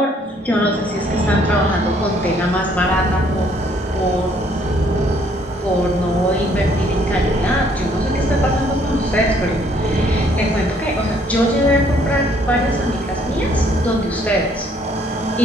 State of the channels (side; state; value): both; normal; correlation 0.64